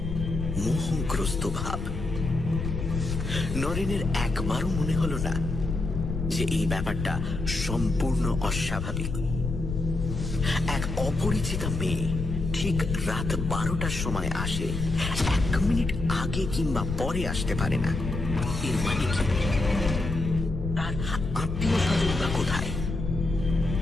মোহগ্রস্ত ভাব। নরেনের একবারও মনে হলো না যে এই ব্যাপারটা সম্পূর্ণ অস্বাভাবিক। এক অপরিচিতা মেয়ে ঠিক রাত 12টার সময় আসে, 1 মিনিট আগে কিংবা পরে আসতে পারে না। এর মানে কি? তার আত্মীয় স্বজন বা কোথায়?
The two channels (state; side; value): noise; left; rumble, 4 dB below the sound